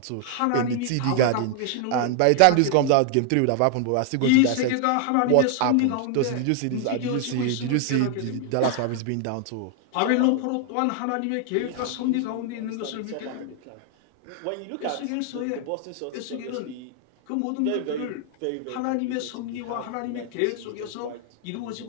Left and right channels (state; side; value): different; both; correlation 0.00